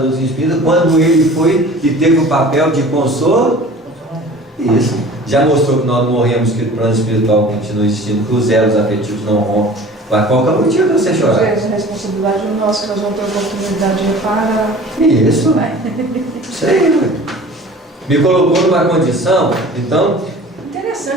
doutrina espírita, quando ele foi e teve o papel de consolo, isso. Já mostrou que nós morremos, que o plano espiritual continua existindo, que os elos afetivos não rompem. Mas qual que é o motivo de você chorar? A responsabilidade é nossa, que nós vamos ter a oportunidade de reparar. Isso. Isso aí, ué. Me colocou numa condição, então.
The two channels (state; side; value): normal; both; correlation 0.43